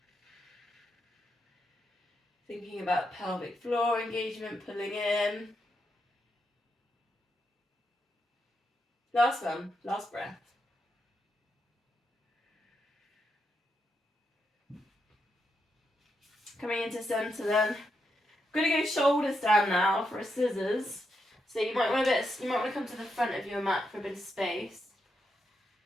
Thinking about pelvic floor engagement, pulling in. Last one, last breath. Coming into center then. I'm going to go shoulders down now for a scissors. So you might want to come to the front of your mat for a bit of space.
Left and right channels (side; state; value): both; normal; correlation 0.83